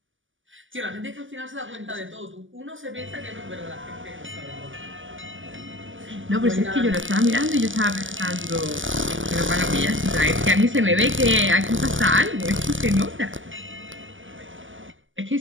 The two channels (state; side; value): late; left; 0.57 ms